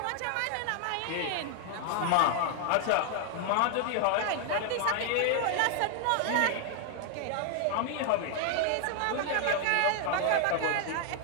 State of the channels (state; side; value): different; both; correlation 0.00